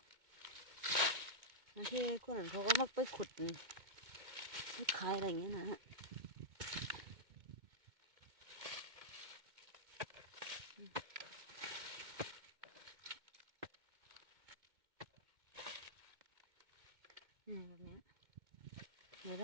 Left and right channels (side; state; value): left; late; 2.1 ms